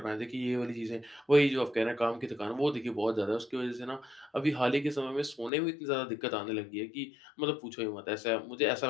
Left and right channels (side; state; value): right; drops out; at 5.5 s